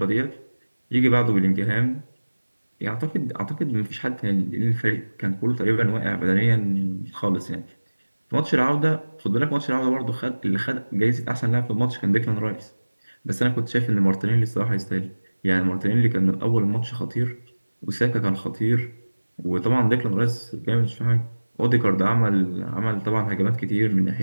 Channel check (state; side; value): inverted; both; correlation -1.00